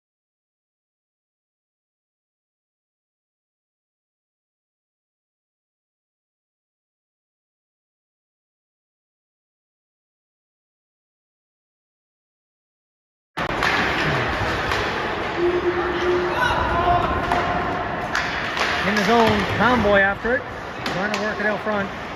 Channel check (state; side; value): identical; both; correlation 1.00